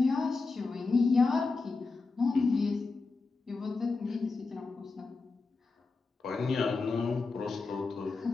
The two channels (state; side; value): quieter; right; 4.0 dB